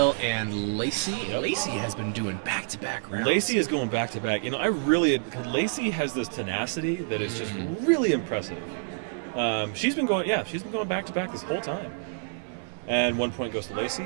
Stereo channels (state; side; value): silent; left; digital silence